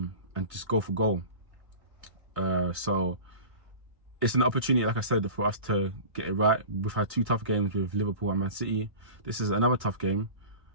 just go for goal. So it's an opportunity, like I said, for us to get it right. We've had 2 tough games with Liverpool and Man City. This is another tough game,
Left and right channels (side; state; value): left; late; 1.6 ms